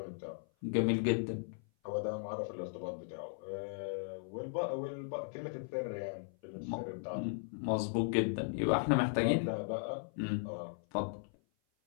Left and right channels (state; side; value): silent; right; 53 dB below the other